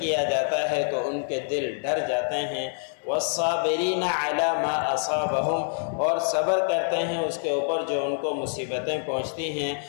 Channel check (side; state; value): right; silent; 61 dB below the other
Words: جاتا ہے تو ان کے دل ڈر جاتے ہیں۔ والصابرین علی ما اصابہم، اور صبر کرتے ہیں اس کے اوپر جو ان کو مصیبتیں پہنچتی ہیں۔